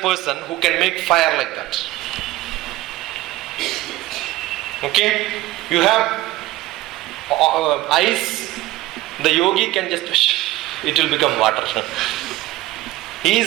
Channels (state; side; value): quieter; left; 17.4 dB